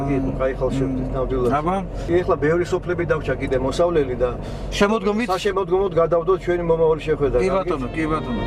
იყო, კაი ხალხშევდით ნამდვილად. აბა, ეხლა ბევრი სოფლები დავრჩა კიდე მოსავლელი და შემოდგომით საშემოდგომოდ გადავდოთ ჩვენი მომავალი შეხვედრა. კი ბატონო, კი ბატონო,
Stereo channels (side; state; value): both; identical; correlation 1.00